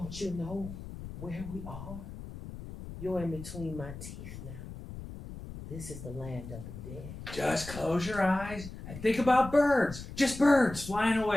you know where we are? You're in between my teeth now. This is the land of the dead. Just close your eyes and think about birds. Just birds flying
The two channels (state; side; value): noise; left; rumble, 11 dB below the sound